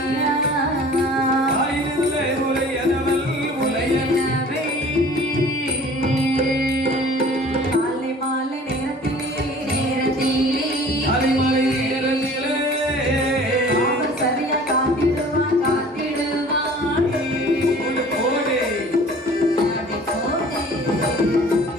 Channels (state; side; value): normal; both; correlation 0.47